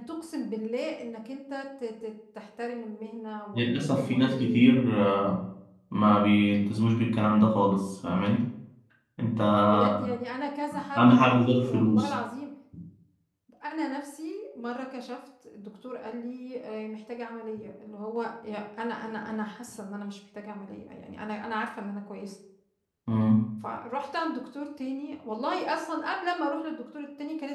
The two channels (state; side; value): identical; both; correlation 1.00